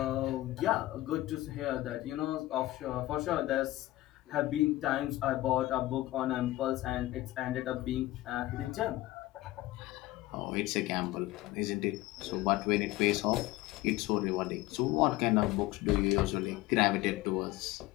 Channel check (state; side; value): quieter; right; 17.3 dB